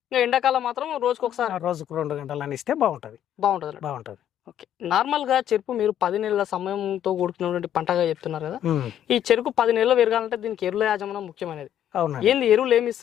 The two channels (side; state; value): right; quieter; 10.6 dB